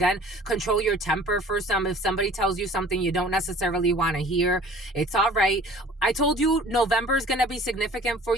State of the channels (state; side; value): normal; both; correlation 0.49